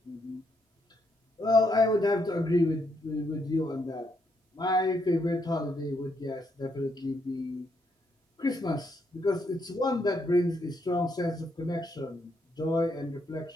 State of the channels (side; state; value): both; normal; correlation 0.76